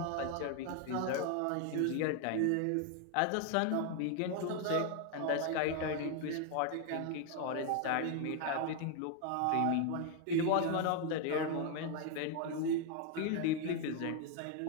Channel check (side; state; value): both; different; correlation 0.00